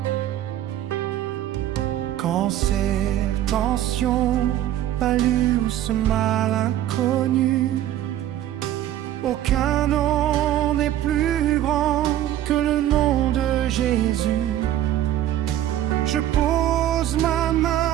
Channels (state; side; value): quieter; left; 12.5 dB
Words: Cancer, tension, palu ou ce mal inconnu, aucun nom n'est plus grand que le nom de Jésus. Je pose ma